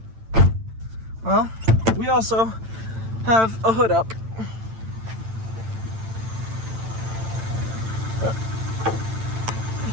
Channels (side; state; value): left; late; 8.9 ms